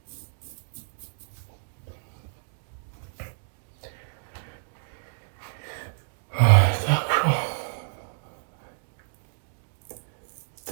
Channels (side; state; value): left; silent; digital silence